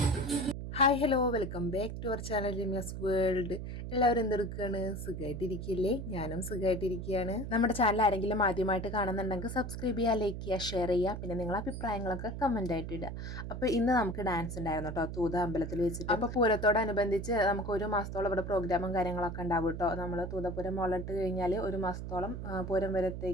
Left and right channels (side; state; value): right; noise; hum, 6 dB below the sound